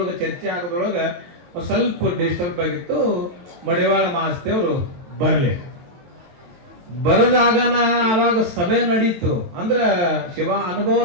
ಚರ್ಚೆ ಆಗೋದ್ರೊಳಗ ಒಂದ್ ಸ್ವಲ್ಪ ಡಿಸ್ಟರ್ಬ್ ಆಗಿತ್ತು. ಮಡಿವಾಳ ಮಾಸ್ತೇವ್ರು ಬರದಾಗನ ಅವಾಗ ಸಭೆ ನಡೀತು, ಅಂದ್ರ ಶಿವ ಅನುಭವ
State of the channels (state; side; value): late; left; 22 ms